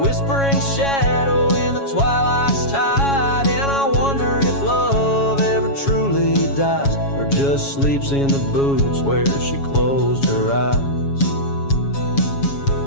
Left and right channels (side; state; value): right; late; 7.2 ms